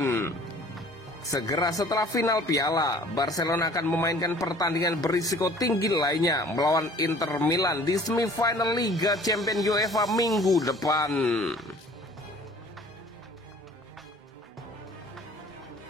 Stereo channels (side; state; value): both; normal; correlation 0.51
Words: Segera setelah final piala, Barcelona akan memainkan pertandingan berisiko tinggi lainnya melawan Inter Milan di semifinal Liga Champions UEFA minggu depan.